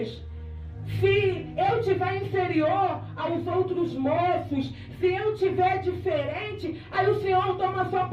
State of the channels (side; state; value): both; identical; correlation 1.00